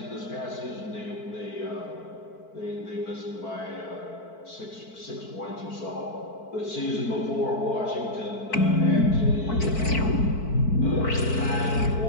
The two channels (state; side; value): late; right; 4.5 ms